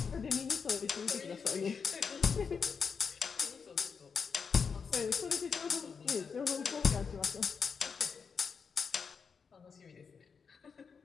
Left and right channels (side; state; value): right; quieter; 5.9 dB